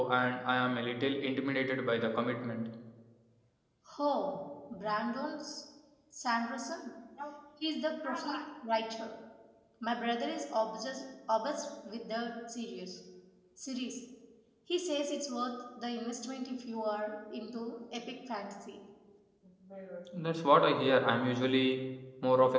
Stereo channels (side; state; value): both; identical; correlation 1.00